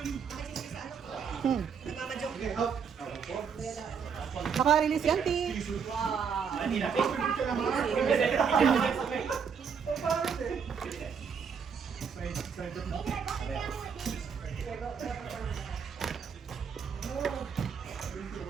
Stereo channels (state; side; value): quieter; left; 6.6 dB